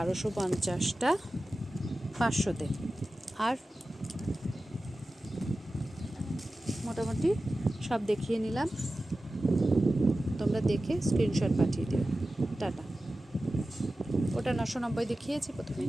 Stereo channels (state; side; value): normal; both; correlation 0.95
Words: 500-তে। আর মোটামুটি সব দেখিয়ে নিলাম, তোমরা দেখে স্ক্রিনশট পাঠিয়ে দিও। টাটা। ওটা 990 দেখিয়েছি প্রথমে,